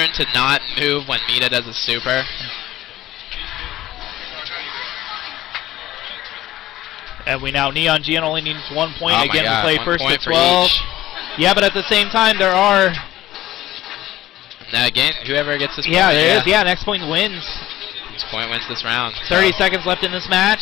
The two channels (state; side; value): quieter; right; 14.9 dB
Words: to not move when Mita does a super. And Neon Geon only needs 1 point. Again, we play first to 12. Yeah, but at the same time, there are... Now again, whoever gets this point. Yeah, there is. Yeah, next point wins. This point wins this round. 30 seconds left in this